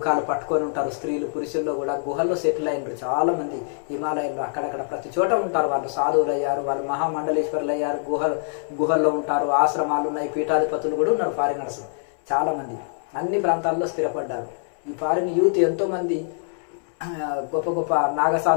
పట్టుకొని ఉంటారు. స్త్రీలు పురుషుల్లో కూడా గుహల్లో సెటిల్ అయినారు చాలా మంది హిమాలయాల్లో. అక్కడక్కడ ప్రతి చోట ఉంటారు వాళ్ళు. సాధువులు అయ్యారు, వాళ్ళు మహామండలేశ్వరులు అయ్యారు, గుహల్లో ఉంటారు. ఆశ్రమాలు ఉన్నాయి, పీఠాధిపతులు కూడా ఉన్నారు ఫారినర్స్ చాలా మంది. అన్ని ప్రాంతాల్లో స్థిరపడ్డారు. ఈ ఫారిన్ యూత్ ఎంతో మంది గొప్ప గొప్ప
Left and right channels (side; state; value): right; silent; 62 dB below the other